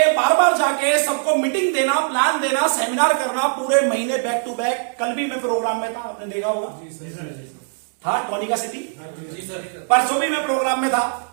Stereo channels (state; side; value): silent; left; digital silence